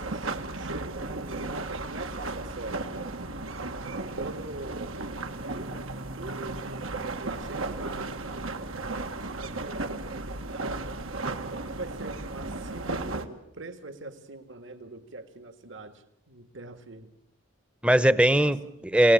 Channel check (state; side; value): normal; both; correlation 0.67